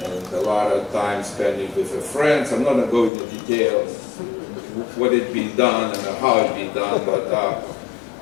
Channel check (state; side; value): drops out; right; at 3.1 s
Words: and a lot of time spending with the friends. I'm not going to go into details what it be done and how it be done,